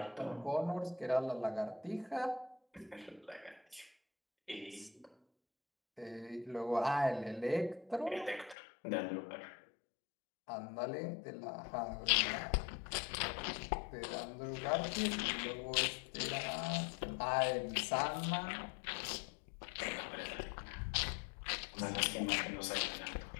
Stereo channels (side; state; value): right; drops out; at 8.6 s